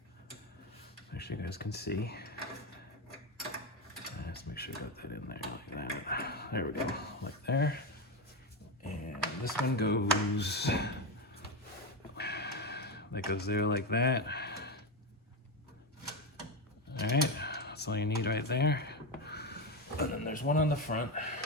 Actually, you guys can see. Let's make sure I got that in there like that. There we go, like there. And this one goes, that goes there like that. All right, that's all you need right there. And then there's one on the front.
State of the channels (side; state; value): both; normal; correlation 0.13